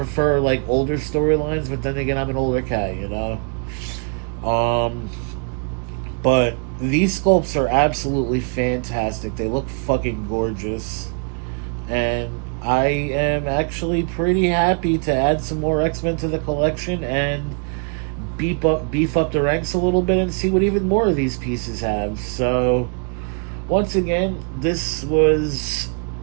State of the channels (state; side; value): quieter; left; 38.5 dB